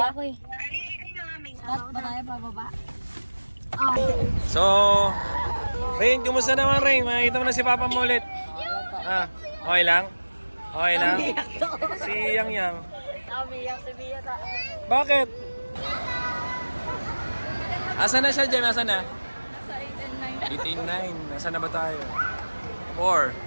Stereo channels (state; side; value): inverted; both; correlation -1.00